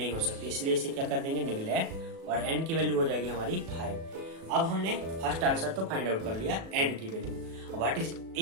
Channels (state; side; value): late; left; 37 ms